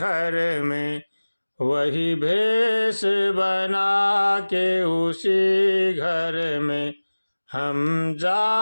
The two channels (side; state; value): both; inverted; correlation -1.00